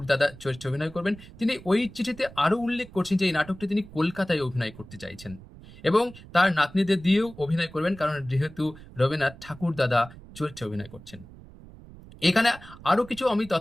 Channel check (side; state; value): right; noise; rumble, 19 dB below the sound